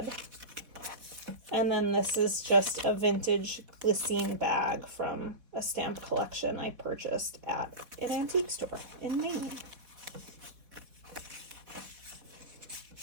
And then this is just a vintage glycine bag from a stamp collection I purchased at an antique store in Maine.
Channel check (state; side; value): late; left; 4.1 ms